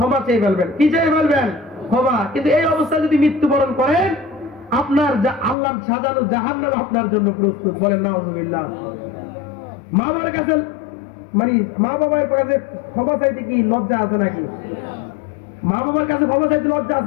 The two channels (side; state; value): right; drops out; at 5.6 s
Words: চেয়ে ফেলবেন। কি চেয়ে ফেলবেন? ক্ষমা। কিন্তু এই অবস্থায় যদি মৃত্যুবরণ করেন, আপনার আল্লাহর সাজানো জাহান্নাম আপনার জন্য প্রস্তুত। বলেন নাউজুবিল্লাহ। মা বাবার কাছে মানে মা বাবার কাছে ক্ষমা চাইতে কি লজ্জা আছে নাকি? মা বাবার কাছে ক্ষমা চাইতে লজ্জা